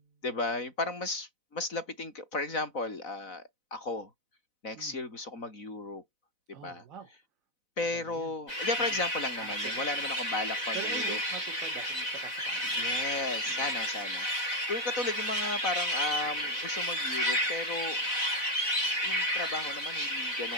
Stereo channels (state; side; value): late; right; 4.0 ms